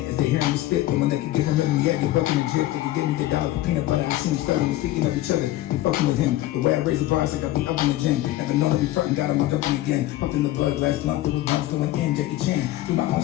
as they hear me spit. But when they can get him rhythm, yeah, get bucking and drip. They can give me the dollar for peanut butter. I see him studying, speaking of each other. They fucking with him. The way I raise the bars, like I be up in the gym. Never known to be frontin', got on my jumping again. Puffing the blood, last blunt filled with blunts going in. Jackie Chan, do my own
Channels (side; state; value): right; quieter; 15.5 dB